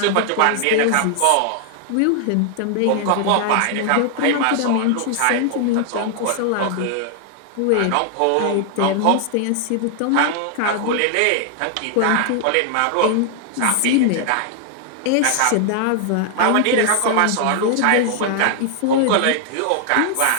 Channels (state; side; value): different; both; correlation 0.00